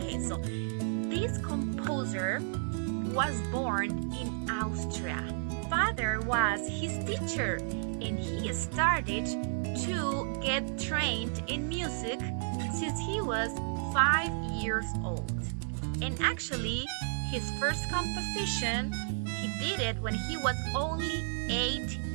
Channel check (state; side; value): silent; left; 56 dB below the other